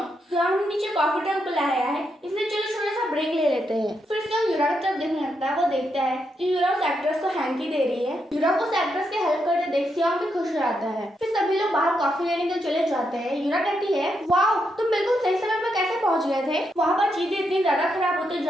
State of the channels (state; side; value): normal; both; correlation 0.81